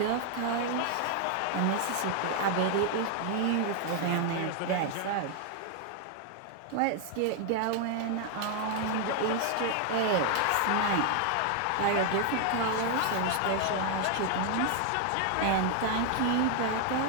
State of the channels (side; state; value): both; different; correlation 0.00